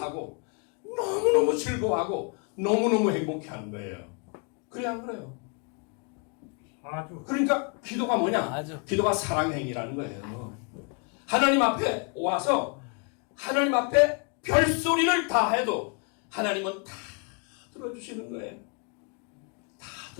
너무너무 즐거워하고, 너무너무 행복해하는 거예요. 그래, 안 그래요? 아주. 그러니까 기도가 뭐냐? 아주. 기도가 사랑의 행위라는 거예요. 하나님 앞에 와서 하나님 앞에 별소리를 다 해도 하나님은 다 들어주시는 거예요. 다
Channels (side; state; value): right; quieter; 37.2 dB